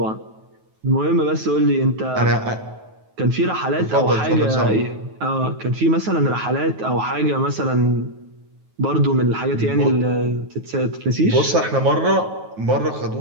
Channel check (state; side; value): late; left; 9.3 ms